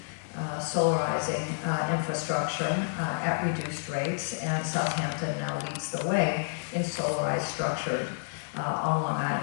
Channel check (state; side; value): silent; right; digital silence